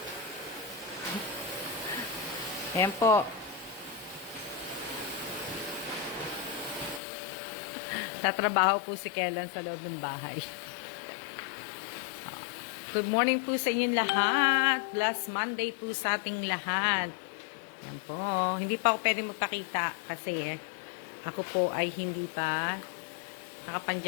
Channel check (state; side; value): drops out; right; at 7.0 s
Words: Ayan po. Tatrabaho po si Kellan sa loob ng bahay. Good morning po sa inyong lahat. Last Monday po sa ating lahat. Ayan po. Hindi pa ako pwede magpakita kasi ako po ay hindi pa